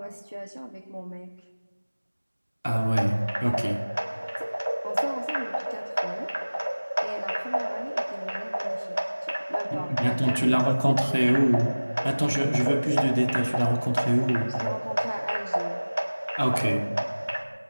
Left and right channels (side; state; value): both; inverted; correlation -1.00